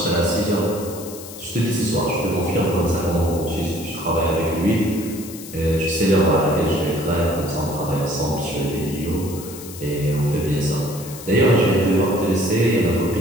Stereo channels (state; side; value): noise; left; hiss, 14 dB below the sound